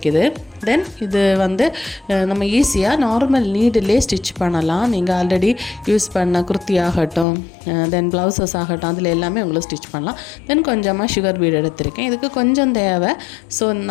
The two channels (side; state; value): right; drops out; at 7.2 s